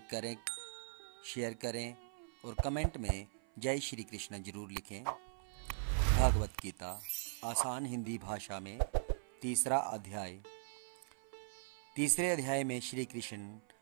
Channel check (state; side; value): silent; left; 51 dB below the other